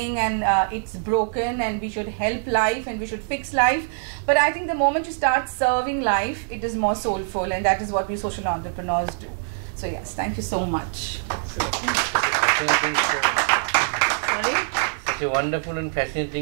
and it's broken and we should help life and we should fix life, but I think the moment you start serving life, it is more soulful, and that is what we social entrepreneurs do. So yes, thank you so much. Sorry? Such a wonderful and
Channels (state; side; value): silent; left; digital silence